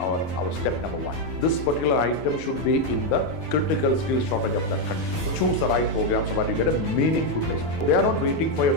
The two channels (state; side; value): late; right; 12 ms